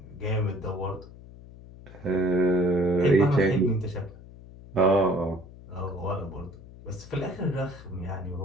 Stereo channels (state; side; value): noise; left; hum, 18 dB below the sound